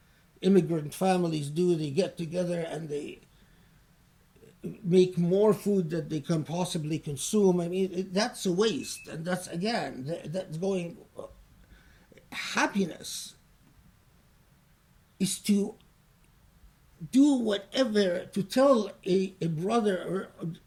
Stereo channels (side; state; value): both; identical; correlation 1.00